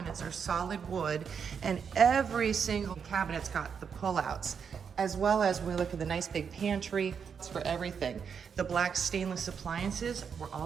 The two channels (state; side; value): quieter; left; 6.8 dB